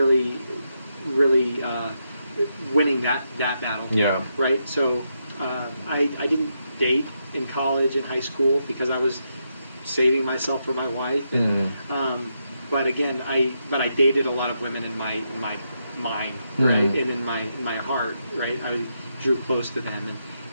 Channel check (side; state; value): both; inverted; correlation -0.82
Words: winning that battle. Yeah. Right. So I didn't date in college and high school because I was saving myself for my wife, but again, I dated a lot of women in my mind, right, and in my heart, right. I drew close to them,